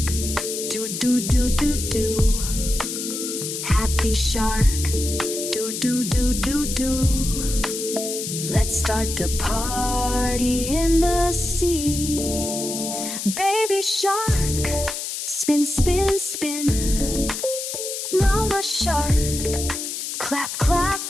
do do do do do. Happy shark, do do do do do. Let's start the party in the sea. Baby shark, spin spin spin. Mama shark, clap clap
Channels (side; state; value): left; noise; hiss, 5 dB below the sound